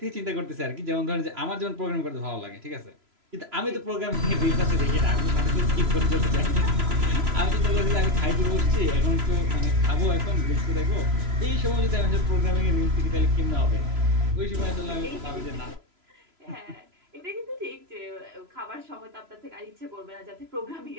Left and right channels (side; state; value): left; late; 3.0 ms